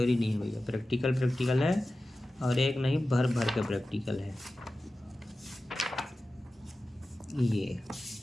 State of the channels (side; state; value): both; normal; correlation 0.95